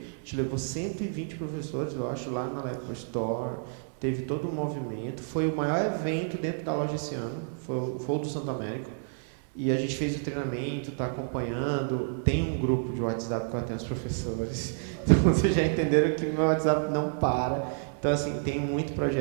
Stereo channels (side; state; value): left; silent; digital silence